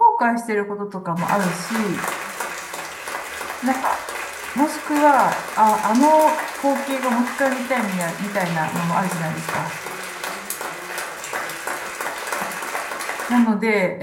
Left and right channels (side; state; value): both; identical; correlation 1.00